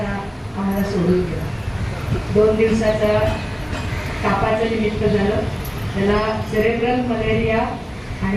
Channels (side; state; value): both; identical; correlation 1.00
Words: आम्हाला सोडून गेला. 2 दिवसाचा तापाचं निमित्त झालं. त्याला सेरेब्रल मलेरिया